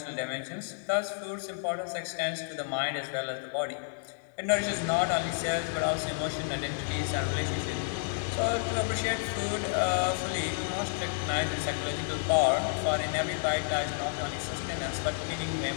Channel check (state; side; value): silent; right; digital silence